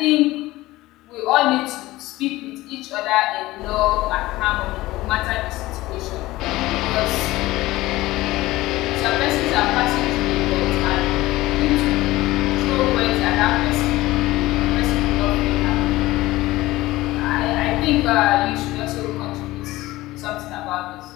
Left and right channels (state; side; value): quieter; right; 18.1 dB